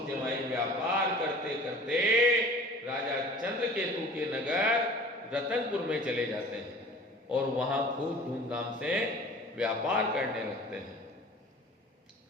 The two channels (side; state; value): both; normal; correlation 0.44